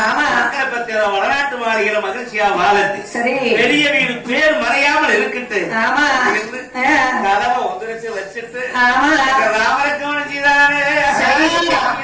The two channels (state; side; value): identical; both; correlation 1.00